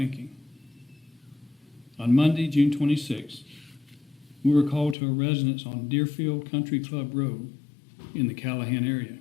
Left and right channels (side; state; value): right; drops out; at 5.0 s